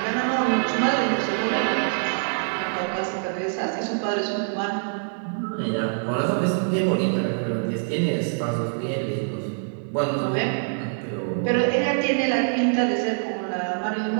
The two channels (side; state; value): left; silent; digital silence